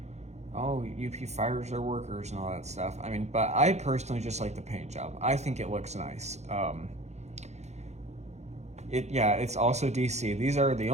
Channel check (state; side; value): late; left; 0.32 ms